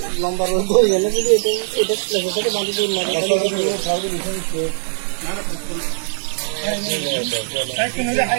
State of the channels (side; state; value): left; silent; 66 dB below the other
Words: লম্বা রোদ হয়ে গেলে যদি এটা সাথে বাঁধি